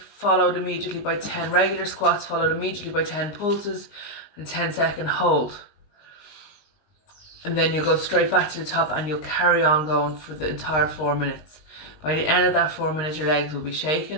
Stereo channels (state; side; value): late; right; 19 ms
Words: immediately by 10 regular squats, followed immediately by 10 pulses and 10-second hold. And then you'll go straight back to the top and you'll carry on going for the entire 4 minutes. By the end of that 4 minutes, your legs will be